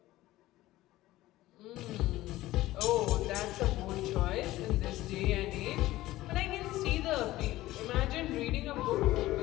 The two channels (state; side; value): quieter; right; 16.5 dB